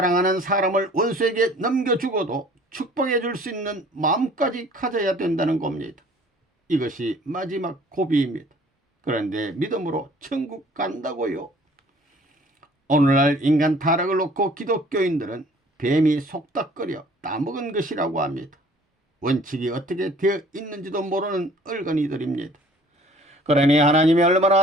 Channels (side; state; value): both; normal; correlation 0.53